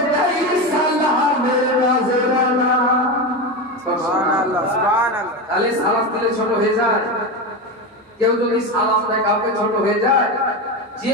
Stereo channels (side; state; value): both; normal; correlation 0.18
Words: দেই সালামের নজরানা। সুবহানাল্লাহ, সুবহানাল্লাহ। তাহলে সালাম দিলে ছোট হয়ে যায়? কেউ যদি সালাম দেয় কাউকে ছোট হয়ে যায়? যে